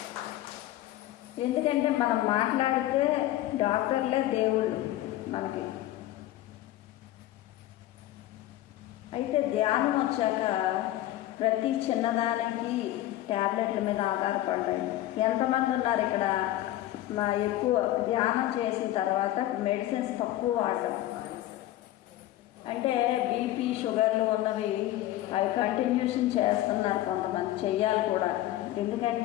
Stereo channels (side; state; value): right; quieter; 14.8 dB